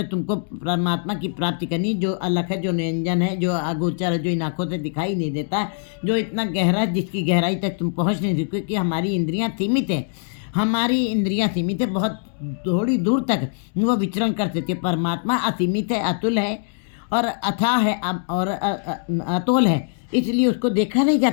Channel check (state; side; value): silent; right; digital silence